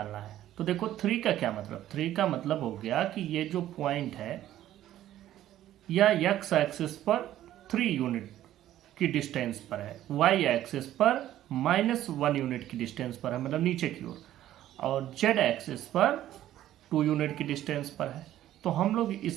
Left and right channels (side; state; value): left; quieter; 12.9 dB